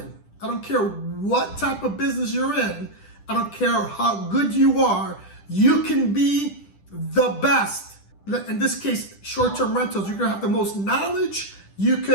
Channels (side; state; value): right; late; 10 ms